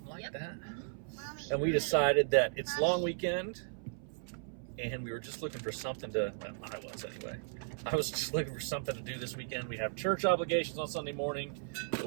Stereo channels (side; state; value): left; silent; 54 dB below the other